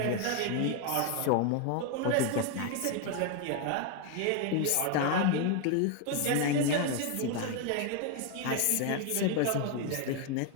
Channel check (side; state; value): both; different; correlation 0.01